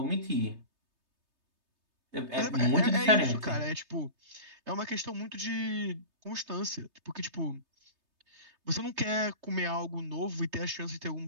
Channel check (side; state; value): left; late; 3.3 ms